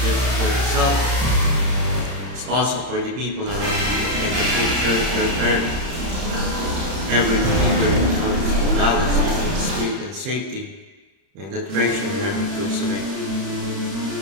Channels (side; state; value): left; late; 31 ms